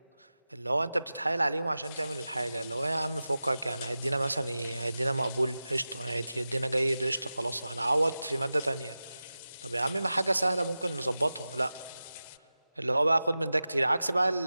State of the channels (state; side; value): inverted; both; correlation -0.94